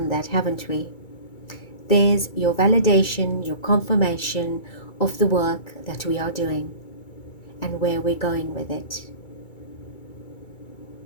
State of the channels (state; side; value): late; right; 2.3 ms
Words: that, haven't we? There's your validation, your confirmation of the work that we are doing and where we're going with it.